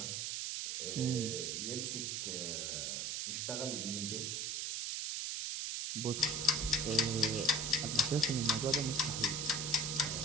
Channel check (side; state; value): right; noise; hiss, 1 dB below the sound